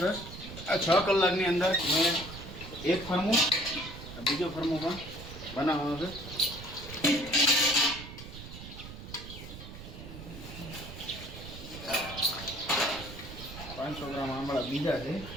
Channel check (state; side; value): noise; right; rumble, 12 dB below the sound